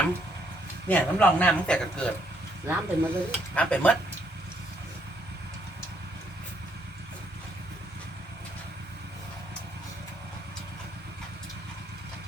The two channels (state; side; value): normal; both; correlation 0.70